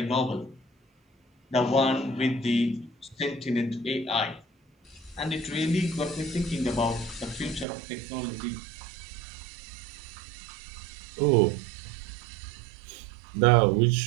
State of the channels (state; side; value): drops out; left; at 7.7 s